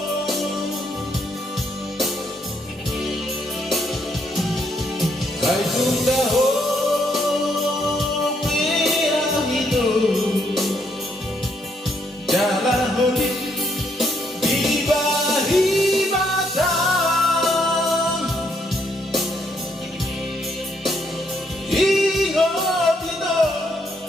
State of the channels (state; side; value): normal; both; correlation 0.73